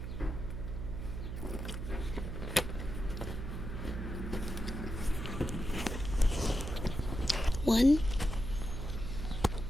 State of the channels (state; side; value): noise; right; hum, 5 dB below the sound